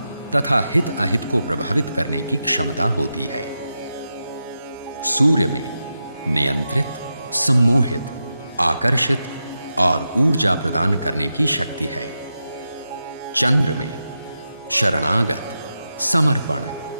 तथा हित अहित को प्रभावित करने की क्षमता होती है। सूर्य में नियंत्रित, सम्मोहित, आकर्षित और ऊर्जा प्रदान करने की शक्ति है। चंद्र में शरणागत, समर्पण,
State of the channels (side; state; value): both; inverted; correlation -0.89